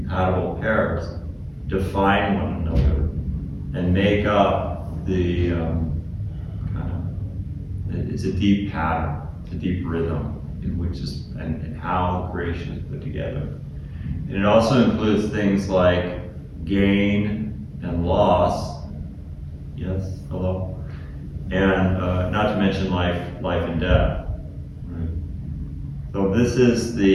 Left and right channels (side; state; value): both; identical; correlation 1.00